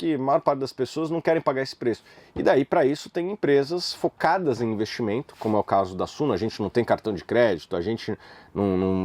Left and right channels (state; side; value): identical; both; correlation 1.00